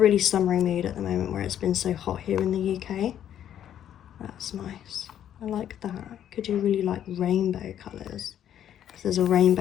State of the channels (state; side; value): quieter; right; 10.3 dB